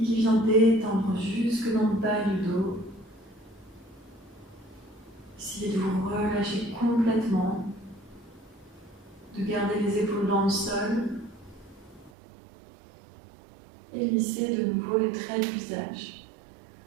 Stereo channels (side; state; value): left; drops out; at 12.1 s